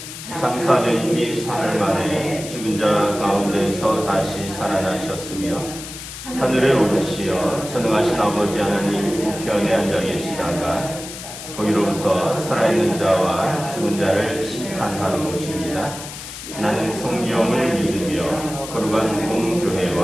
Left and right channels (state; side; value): noise; left; hiss, 11 dB below the sound